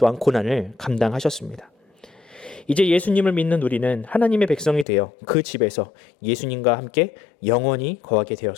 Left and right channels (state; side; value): drops out; right; at 4.9 s